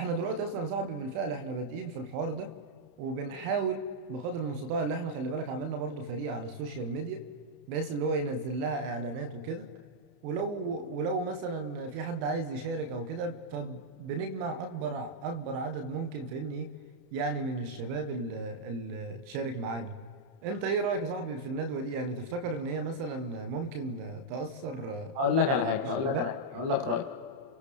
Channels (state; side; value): late; left; 31 ms